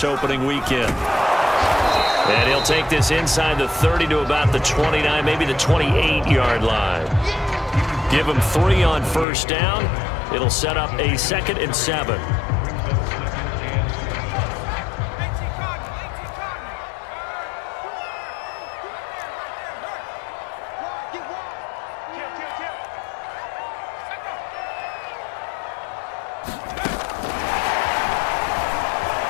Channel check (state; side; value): drops out; right; at 9.2 s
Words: opening weekend. And he'll take this inside the 30 to about the 29, maybe the 28-yard line. Give him 3 on first down. It'll set up a 2nd and 7.